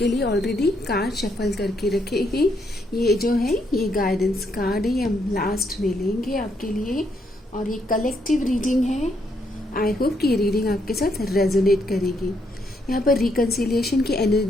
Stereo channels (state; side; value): normal; both; correlation 0.75